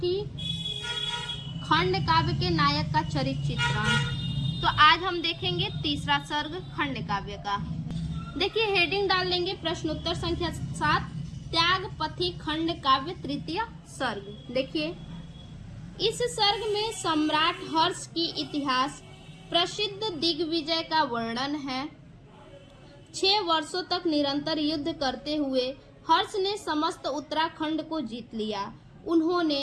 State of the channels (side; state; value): both; identical; correlation 1.00